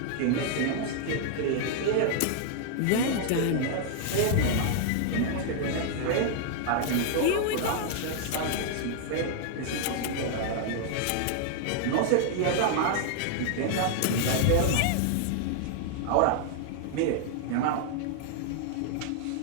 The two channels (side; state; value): both; different; correlation 0.00